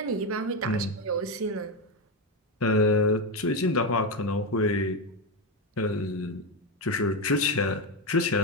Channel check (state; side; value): normal; both; correlation 0.10